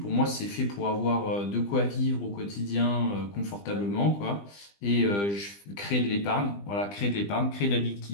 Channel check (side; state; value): right; late; 20 ms